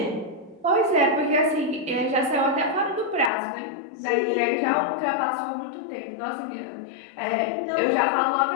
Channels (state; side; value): drops out; right; at 3.3 s